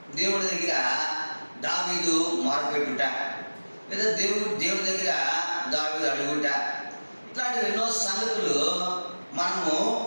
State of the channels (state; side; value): inverted; both; correlation -1.00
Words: దేవుడి దగ్గర దావీదు మొరపెట్టుట, లేదా దేవుడి దగ్గర దావీదు అడుగుట, ఇట్లాంటివి ఎన్నో సంగతులు మనము